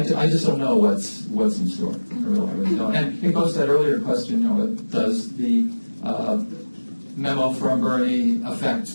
just don't know what's in store. I really don't. And it goes to that earlier question, does the memo from Bernie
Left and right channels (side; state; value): both; inverted; correlation -1.00